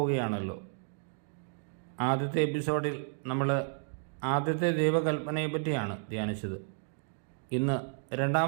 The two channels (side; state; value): left; silent; 56 dB below the other